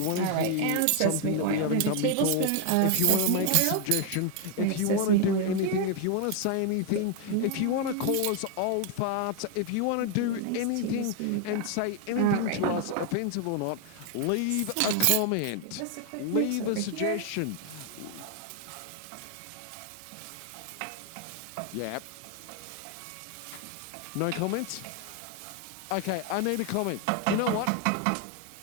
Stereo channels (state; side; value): different; both; correlation 0.01